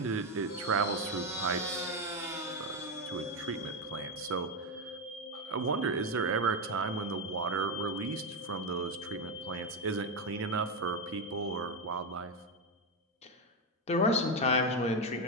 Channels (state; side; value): normal; both; correlation 0.08